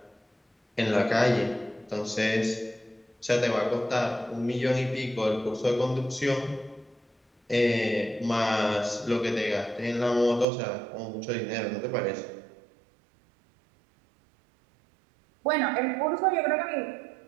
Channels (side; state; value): left; drops out; at 10.5 s